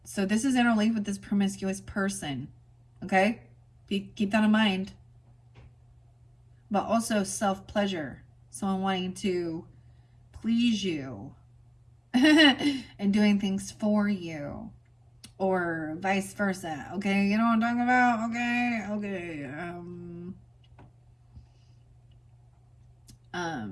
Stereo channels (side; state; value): both; identical; correlation 1.00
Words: So this is interlinked with this promiscuous person. Okay? Keep that in mind. But also self-pleasure. Someone wanting to please you. And doing things for you. Or vice versa. Okay? You know what I'm talking about? Okay.